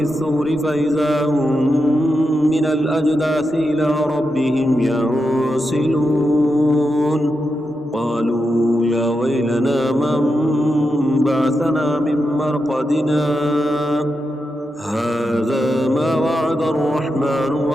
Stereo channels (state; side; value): normal; both; correlation 0.87